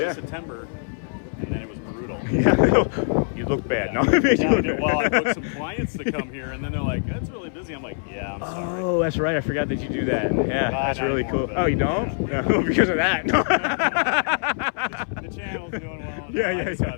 Yeah. of September, and then it was brutal. Yeah, you look bad. Yeah. No? Well, I booked some clients to come here, and then they're like, "That's really busy." I'm like, "Yeah, I'm sorry." Oh, that's right. I forgot that you do that. Yeah, that's not really anymore, cool. but- Oh, you don't? Yeah. No, because of that. The channel's doing well. Yeah, I just yeah.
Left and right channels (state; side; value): silent; right; 61 dB below the other